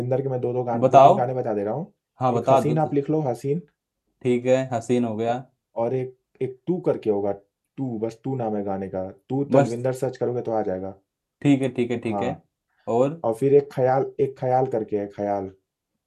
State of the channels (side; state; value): both; identical; correlation 1.00